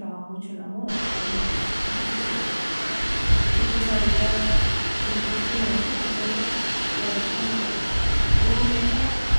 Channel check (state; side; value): inverted; both; correlation -1.00